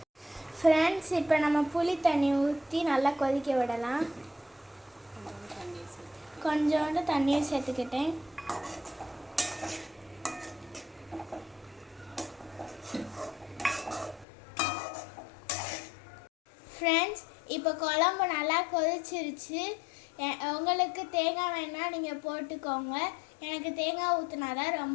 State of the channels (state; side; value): drops out; right; at 14.2 s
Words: ஃப்ரெண்ட்ஸ், இப்போ நம்ம புளி தண்ணி ஊற்றி நல்லா கொதிக்க விடலாம். கொஞ்சோண்டு தண்ணியும் சேர்த்துக்கிட்டேன். ஃப்ரெண்ட்ஸ், இப்போ குழம்பு நல்லா கொதிச்சிருச்சு. உங்களுக்கு தேங்காய் வேணால் நீங்கள் போட்டுக்கோங்க. எனக்கு தேங்காய் ஊற்றினா தான்